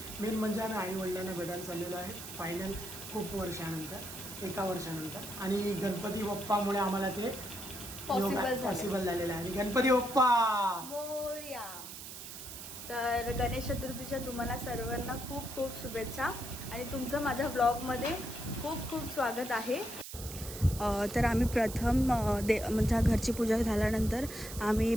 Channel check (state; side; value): noise; right; hiss, 11 dB below the sound